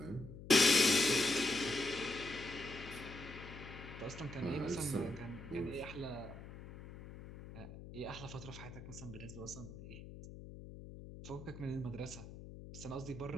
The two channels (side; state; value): left; noise; hum, 13 dB below the sound